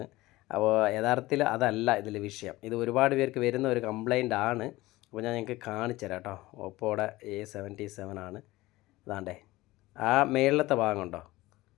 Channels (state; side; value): quieter; right; 18.8 dB